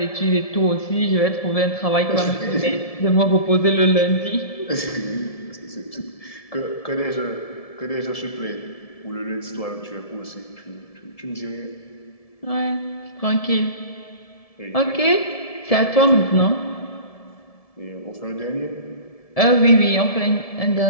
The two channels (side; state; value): right; late; 1.7 ms